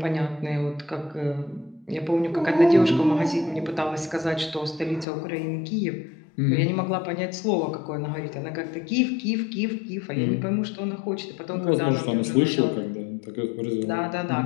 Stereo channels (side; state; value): right; drops out; at 5.1 s